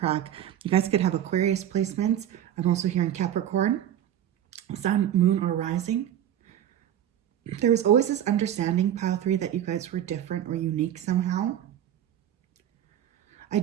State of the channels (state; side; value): quieter; left; 10.8 dB